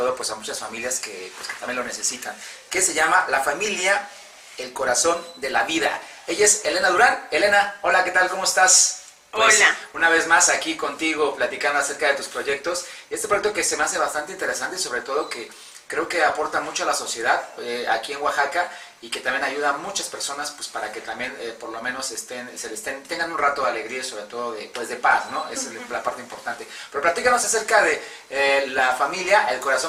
pues a muchas familias que también lo necesitan, que se llama La Familia, el Corazón de la Vida. Ella es Elena Durán. Elena, hola, ¿qué tal? ¿Cómo estás? Pues, hola. Una vez más aquí contigo platicando acerca de tus proyectos. Este proyecto que se me hace bastante interesante y sobre todo que creo que aporta mucho a la sociedad aquí en Oaxaca y que también ayuda a muchas personas pues para que también por lo menos tengan un rato de alegría y sobre todo de paz, ¿no? Esa es la parte importante. Pero platícanos acerca de La Familia, el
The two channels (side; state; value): both; identical; correlation 1.00